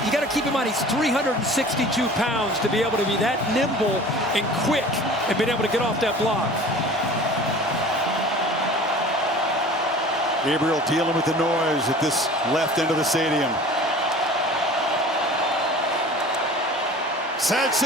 you got to keep in mind, he's 362 pounds to be able to be that nimble and quick and being able to get off that block. Gabriel dealing with the noise at this left end of the stadium.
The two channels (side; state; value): both; normal; correlation 0.43